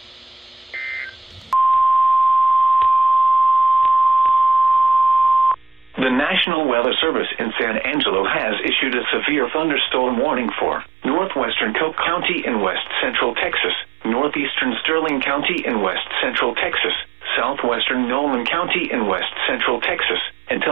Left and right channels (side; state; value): left; drops out; at 6.5 s